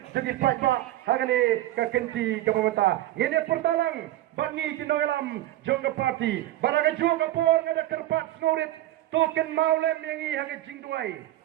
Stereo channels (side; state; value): left; quieter; 14.9 dB